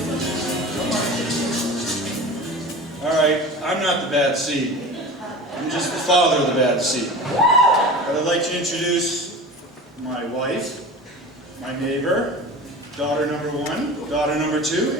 All right, I'm not the bad seed. I'm just the father of the bad seed. But I'd like to introduce my wife, my neighbor, daughter number 1, daughter number 2,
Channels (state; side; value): normal; both; correlation 0.34